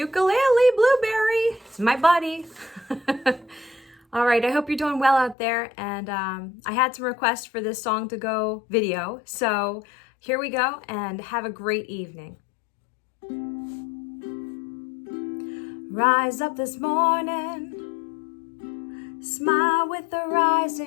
Blueberry. It's my buddy. All right, I hope you're doing well out there, and I had some requests for this song to go video, so here we go, and have a great evening. Rise up this morning, smile with the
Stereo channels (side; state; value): right; drops out; at 5.4 s